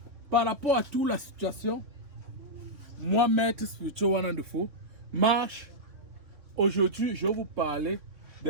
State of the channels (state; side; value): late; left; 3.8 ms